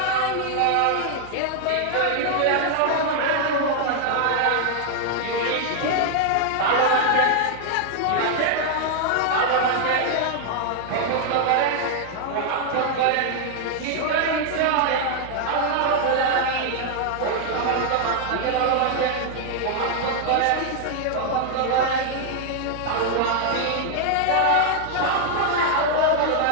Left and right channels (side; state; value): both; different; correlation 0.00